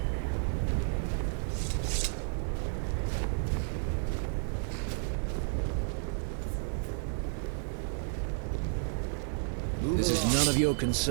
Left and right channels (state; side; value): silent; left; 57 dB below the other